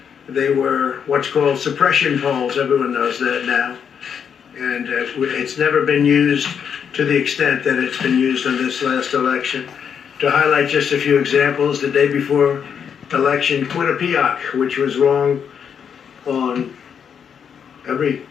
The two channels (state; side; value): quieter; right; 7.5 dB